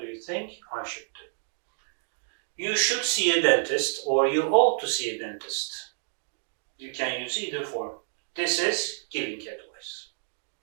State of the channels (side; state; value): left; silent; digital silence